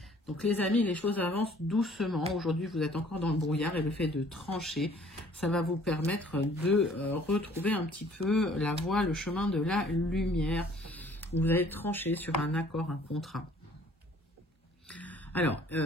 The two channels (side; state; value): both; normal; correlation 0.56